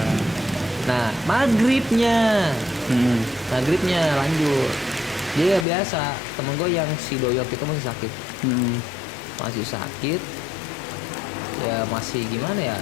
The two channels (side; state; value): right; drops out; at 5.7 s